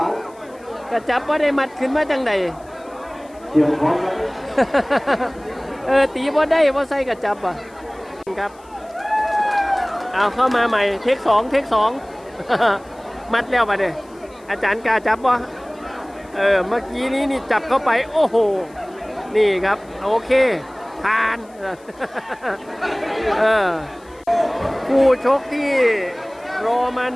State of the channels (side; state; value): left; noise; hiss, 29 dB below the sound